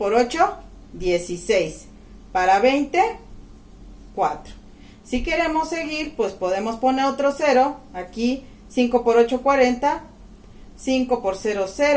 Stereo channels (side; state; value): both; identical; correlation 1.00